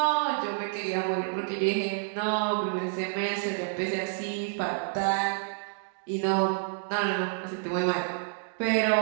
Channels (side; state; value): left; silent; digital silence